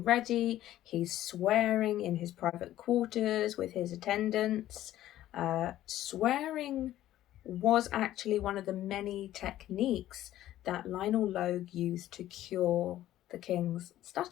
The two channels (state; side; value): quieter; right; 13.6 dB